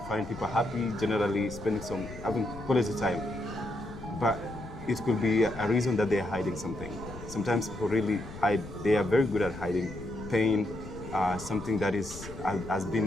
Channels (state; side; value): noise; left; rumble, 13 dB below the sound